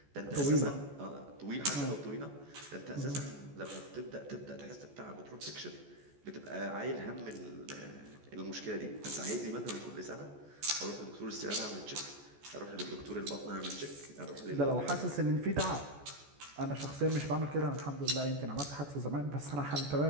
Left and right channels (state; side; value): late; left; 14 ms